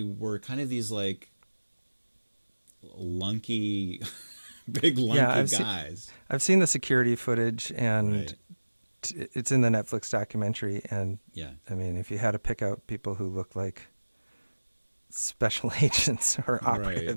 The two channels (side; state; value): both; inverted; correlation -1.00